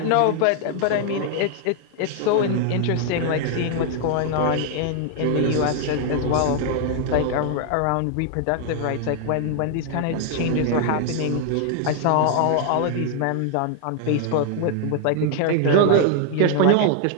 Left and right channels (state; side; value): different; both; correlation 0.00